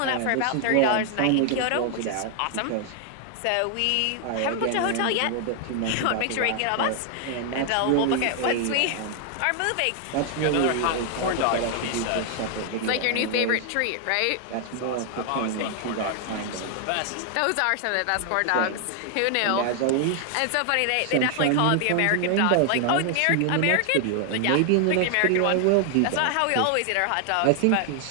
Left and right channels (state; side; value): different; both; correlation 0.00